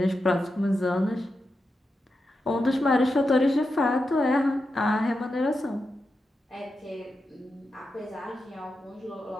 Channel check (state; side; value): normal; both; correlation 0.88